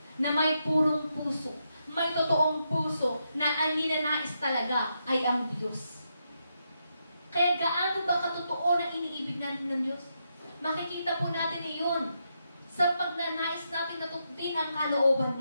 na may purong puso, may totoong puso na ang ninanais talaga ay ang Diyos. Kaya gaano ba katotoo na iniibig natin ng Diyos? Makikita po natin iyon sa pagnanais natin na tututin ang kalooban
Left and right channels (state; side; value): inverted; both; correlation -0.82